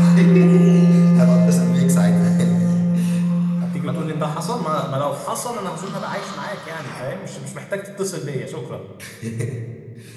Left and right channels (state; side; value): identical; both; correlation 1.00